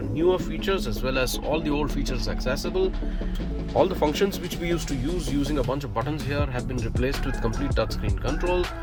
newer features as well as all the old features accessible. All the functions which we used to use using a bunch of buttons here have been replaced with complete touchscreen control.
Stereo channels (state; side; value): identical; both; correlation 1.00